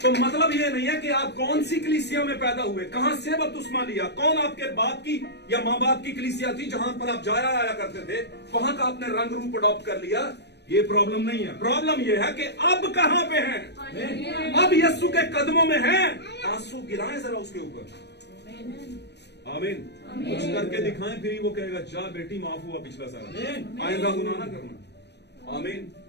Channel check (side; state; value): right; late; 0.50 ms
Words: तो मतलब ये नहीं है कि आप कौन सी कलीसिया में पैदा हुए, कहां से बपतिस्मा लिया, कौन आपके बाप की या मां बाप की कलीसिया थी जहां पर आप जाया आया करते थे, वहां का आपने रंग रूप अडॉप्ट कर लिया, ये प्रॉब्लम नहीं है। प्रॉब्लम ये है कि अब कहां पे हैं? अब यीशु के कदमों में हैं। आंसू गिराएं जरा उसके ऊपर। आमीन। कुछ करके दिखाएं, फिर वो कहेगा जा बेटी माफ हुआ पिछला साल, आइंदा गुनाह ना करना। आमीन।